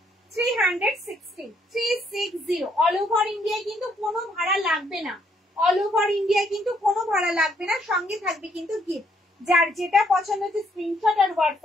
360 360 অল ওভার ইন্ডিয়ায় কিন্তু কোনো ভাড়া লাগবে না, অল ওভার ইন্ডিয়ায় কিন্তু কোনো ভাড়া লাগবে না। সঙ্গে থাকবে কিন্তু গিফট, যার যেটা পছন্দ হচ্ছে স্ক্রিনশট আর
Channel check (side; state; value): both; normal; correlation 0.70